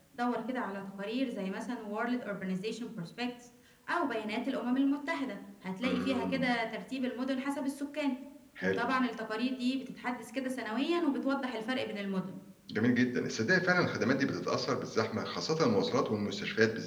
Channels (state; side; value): identical; both; correlation 1.00